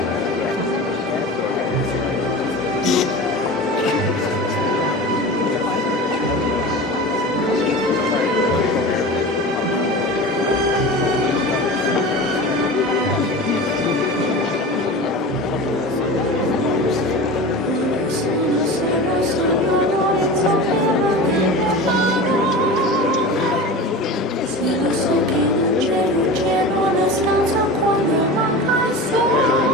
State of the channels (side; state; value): both; normal; correlation 0.31